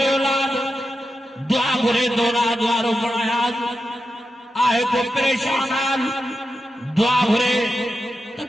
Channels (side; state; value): both; normal; correlation 0.89